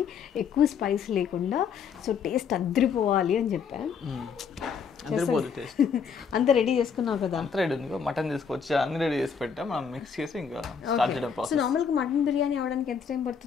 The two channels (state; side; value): quieter; right; 6.5 dB